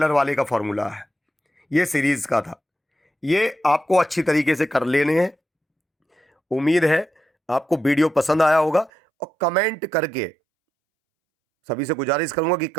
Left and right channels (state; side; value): drops out; left; at 8.9 s